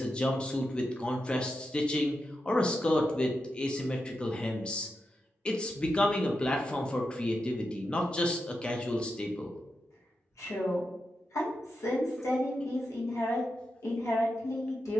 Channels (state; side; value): normal; both; correlation 0.88